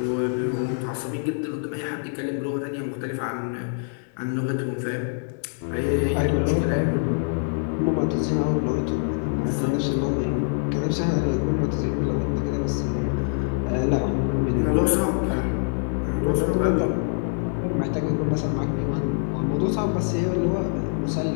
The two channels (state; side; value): silent; right; 62 dB below the other